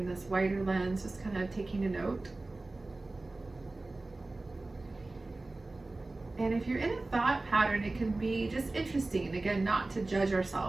this wider lens, just kind of taking a note? And if you're in a thought pattern, it can be just interesting, again, not to judge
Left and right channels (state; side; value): quieter; left; 3.1 dB